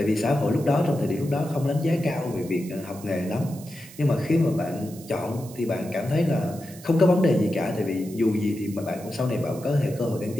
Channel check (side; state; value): right; noise; hiss, 19 dB below the sound